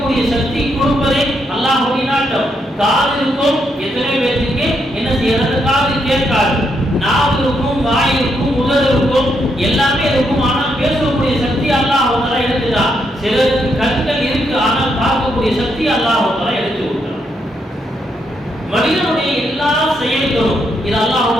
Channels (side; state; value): both; normal; correlation 0.78